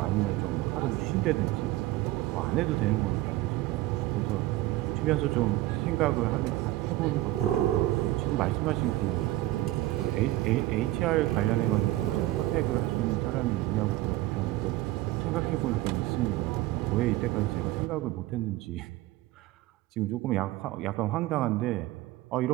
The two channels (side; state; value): left; quieter; 16.7 dB